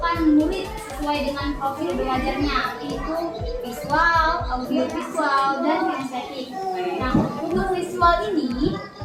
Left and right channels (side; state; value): both; identical; correlation 1.00